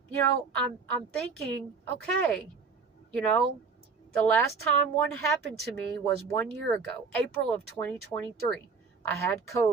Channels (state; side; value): quieter; left; 5.1 dB